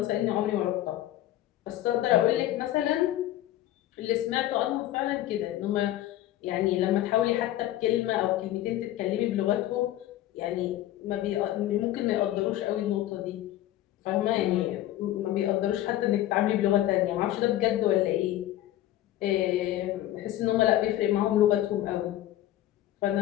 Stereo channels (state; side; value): quieter; right; 13.9 dB